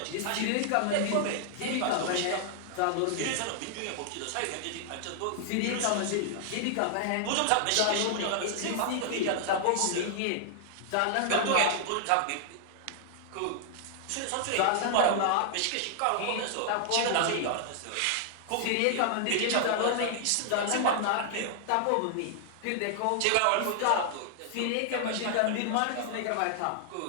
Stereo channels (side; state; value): both; different; correlation 0.00